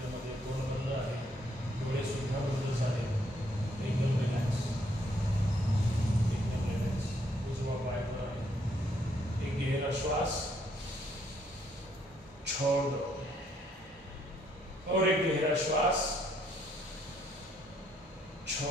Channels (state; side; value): normal; both; correlation 0.70